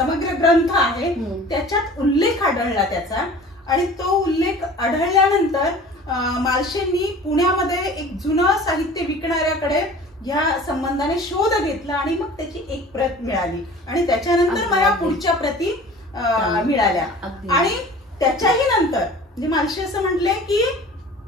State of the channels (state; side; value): normal; both; correlation 0.43